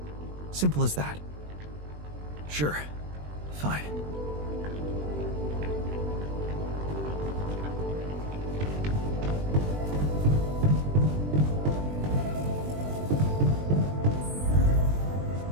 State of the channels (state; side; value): late; left; 20 ms